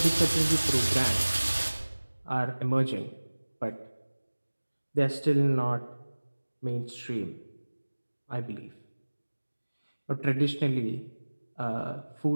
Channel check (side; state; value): both; inverted; correlation -1.00